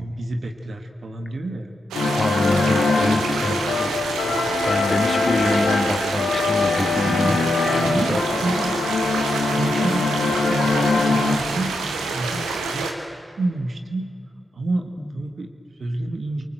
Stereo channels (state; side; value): normal; both; correlation 0.84